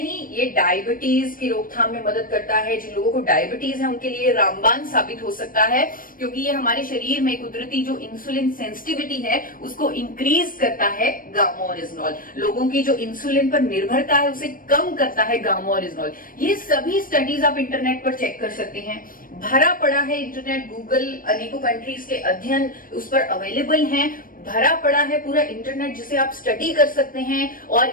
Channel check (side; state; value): right; late; 0.41 ms